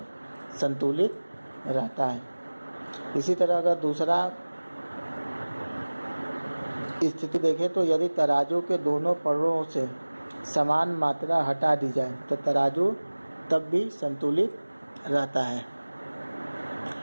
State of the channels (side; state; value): both; inverted; correlation -1.00